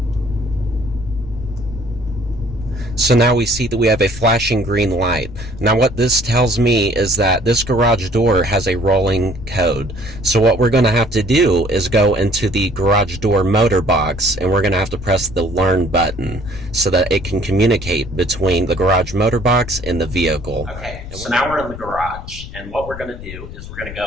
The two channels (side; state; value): left; noise; rumble, 12 dB below the sound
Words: So now we see that we have a flashing green light. Now what this tells me is that this garage door has a rolling code. So what we're going to have to do is go into the garage door motor box, and we're going to have to press the learn button so that it can communicate between the garage motor box and the vehicle. Okay, so now we're in the garage, and what we're going to do is we're going to